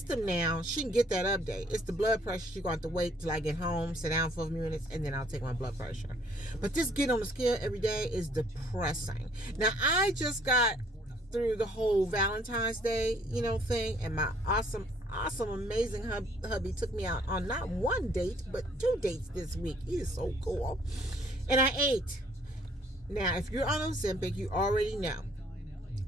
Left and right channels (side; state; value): both; normal; correlation 0.62